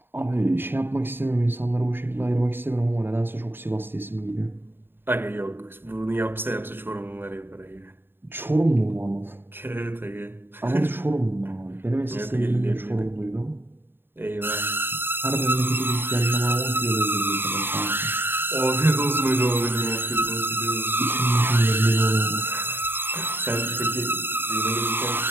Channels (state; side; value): late; left; 0.10 ms